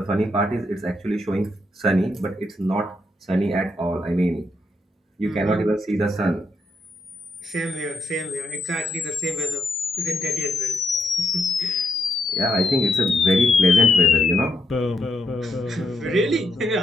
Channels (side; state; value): both; normal; correlation 0.79